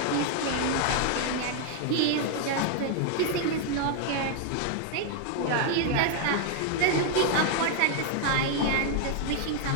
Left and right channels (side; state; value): both; different; correlation 0.00